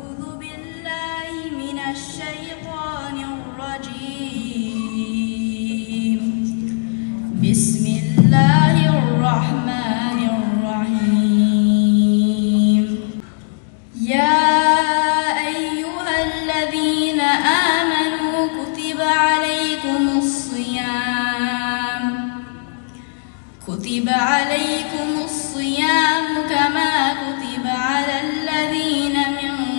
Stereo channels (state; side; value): silent; right; 67 dB below the other